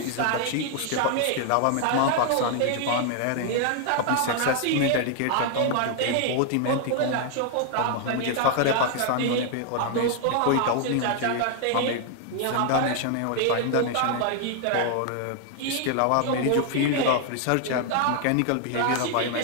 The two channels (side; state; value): both; different; correlation 0.00